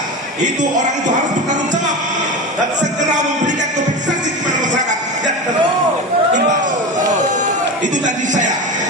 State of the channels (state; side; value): normal; both; correlation 0.25